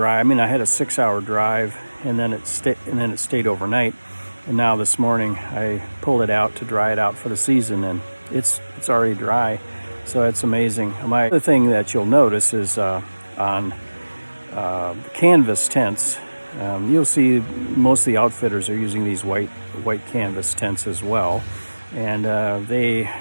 I mean, I had a 6-hour drive, and then it stayed overnight. And now this morning I pulled it out to dry it out for the season, and it's already dry. So it's amazing. My other thing that you'll notice is on the canvas tents, you'll see most of the outfitters are using these white canvas tents as well, and they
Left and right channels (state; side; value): inverted; both; correlation -1.00